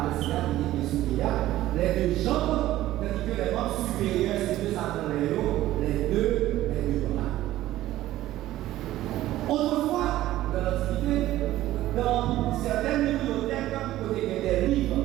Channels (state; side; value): quieter; left; 14.8 dB